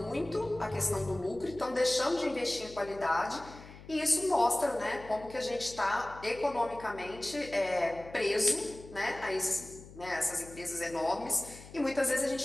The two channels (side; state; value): left; noise; hum, 18 dB below the sound